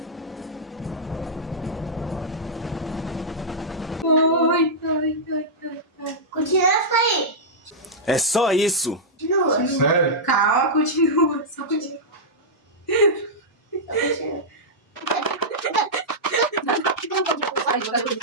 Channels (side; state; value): both; normal; correlation -0.10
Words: Ai, ai, ai, ai, ai. Continua a sair. É só isso. Continua. Sério? Calma, continua. Só continua. Ai, vou dar pra